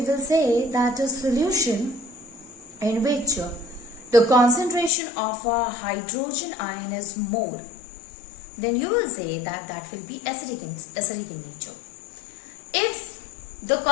will say that a solution in which the concentration of a hydrogen ion is more, then you will say that that will be acidic in nature. If the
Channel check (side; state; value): right; drops out; at 4.9 s